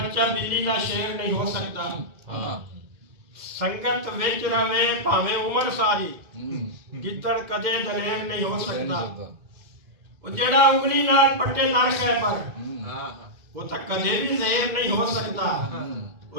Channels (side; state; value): left; late; 2.0 ms